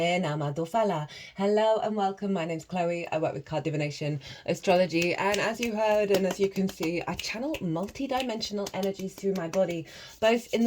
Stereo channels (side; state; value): both; identical; correlation 1.00